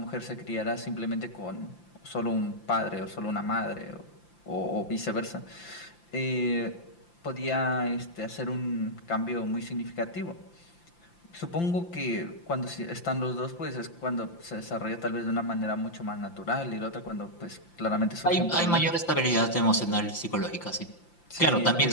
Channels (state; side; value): late; right; 5.8 ms